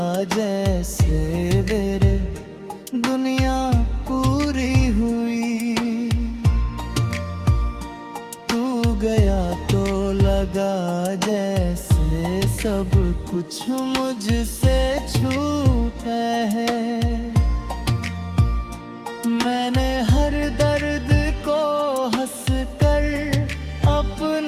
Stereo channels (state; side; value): identical; both; correlation 1.00